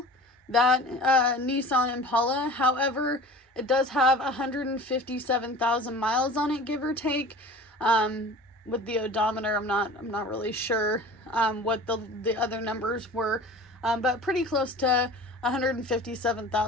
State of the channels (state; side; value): normal; both; correlation 0.40